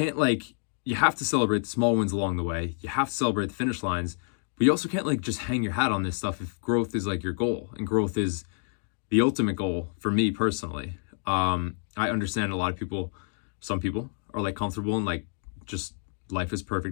like, you have to celebrate the small wins along the way. You have to celebrate the finish lines, but you also can't like just hang your hat on this stuff if growth is like your goal, and growth is the ultimate goal for me personally. I understand a lot of people, some people are like comfortable and like just life is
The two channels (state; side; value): silent; right; 59 dB below the other